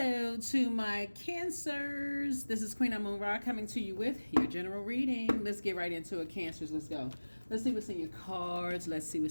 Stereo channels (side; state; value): both; inverted; correlation -1.00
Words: to my Cancers. This is Queen Amun Ra coming to you with your general reading. Let's get right into it, Cancers. Let's go. Let's see what's in your cards. Let's see